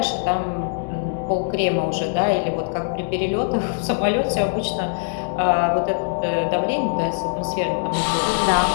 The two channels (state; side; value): silent; right; digital silence